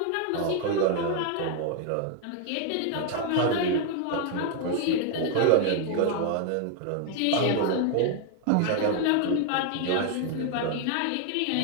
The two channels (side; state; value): both; different; correlation 0.00